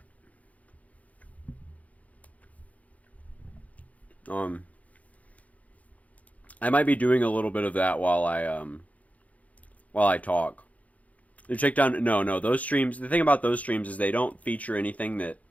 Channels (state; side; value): late; right; 0.070 ms